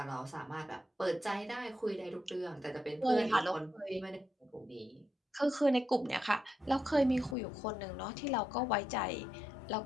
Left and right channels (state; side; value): drops out; right; at 7.4 s